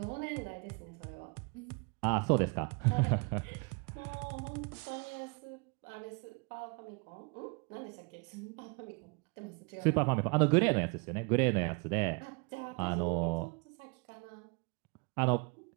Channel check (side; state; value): left; quieter; 32.2 dB